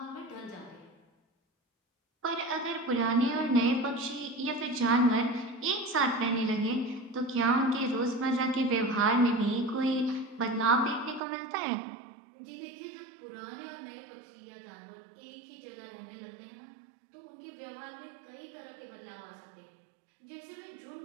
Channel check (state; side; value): drops out; left; at 11.2 s